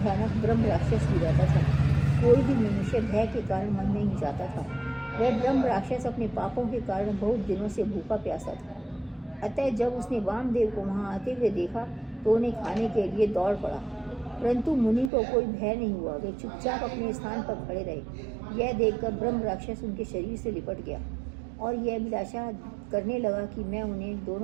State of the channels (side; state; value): left; drops out; at 15.1 s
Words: भयानक ब्रह्म राक्षस भी रहता था। कोई भी मनुष्य भय के कारण मन नहीं जाता था। वह ब्रह्म राक्षस अपने पापों के कारण बहुत दिनों से भूखा प्यासा था। अतः जब उसने वामदेव को वहाँ आते हुए देखा तो उन्हें खाने के लिए दौड़ पड़ा, परंतु मुनि को कोई भय नहीं हुआ। वे चुपचाप अपने स्थान पर खड़े रहे। यह देखकर ब्रह्म राक्षस उनके शरीर से लिपट गया और यह अभिलाषा करने लगा कि मैं उन्हें